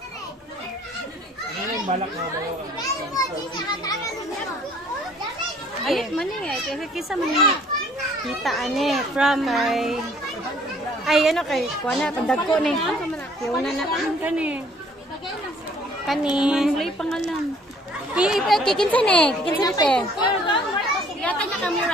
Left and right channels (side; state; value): both; normal; correlation 0.58